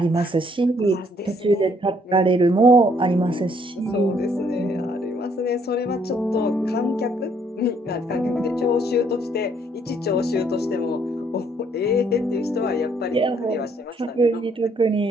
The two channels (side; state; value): both; normal; correlation 0.67